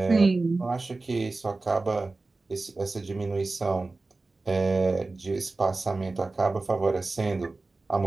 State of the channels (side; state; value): left; quieter; 3.4 dB